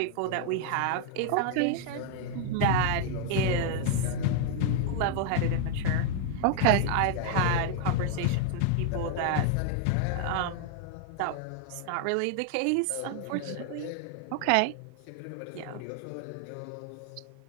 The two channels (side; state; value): both; different; correlation 0.00